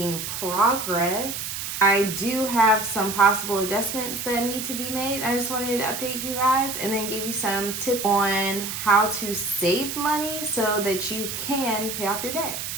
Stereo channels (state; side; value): noise; right; hiss, 5 dB below the sound